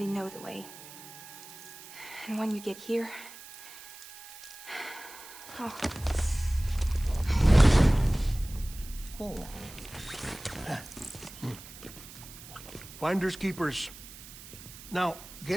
know the way. And when you get here... Oh. Oh. Finders keepers. Now,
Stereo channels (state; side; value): noise; right; hiss, 16 dB below the sound